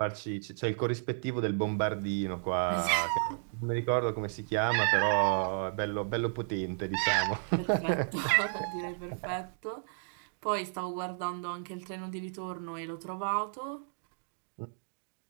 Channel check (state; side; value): silent; left; digital silence